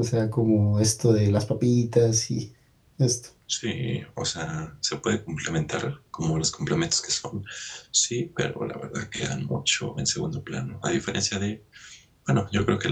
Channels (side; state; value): both; identical; correlation 1.00